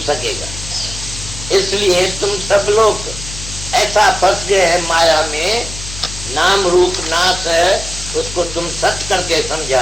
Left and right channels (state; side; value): noise; left; hum, 10 dB below the sound